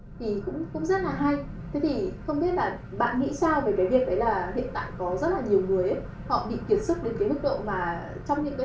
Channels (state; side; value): identical; both; correlation 1.00